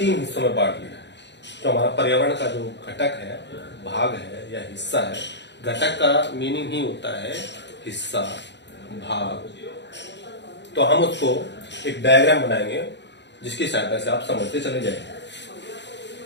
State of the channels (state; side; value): late; right; 0.51 ms